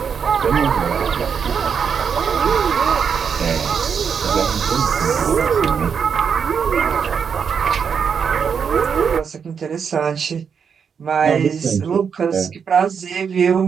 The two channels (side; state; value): left; quieter; 6.7 dB